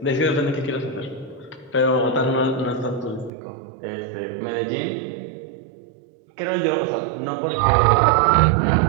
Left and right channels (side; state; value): left; drops out; at 3.3 s